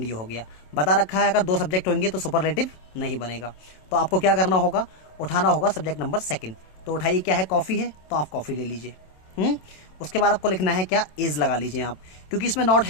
ये हो गया। बता रखा है अगर दो सब्जेक्ट होंगे तो सुपरलेटिव नहीं बनेगा। तो आपको क्या करना होगा, उठाना होगा सब्जेक्ट नंबर सेकंड। तो उठाइए, क्या है, कॉफी है, तो आप कॉफी ले लीजिए। उसके बाद आपको लिखना है क्या, इज लगा लीजिए आप, क्योंकि इसमें नॉट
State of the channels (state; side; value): late; right; 27 ms